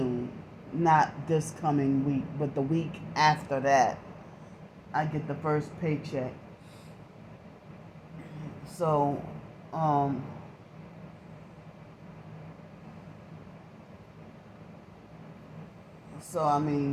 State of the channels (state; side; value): identical; both; correlation 1.00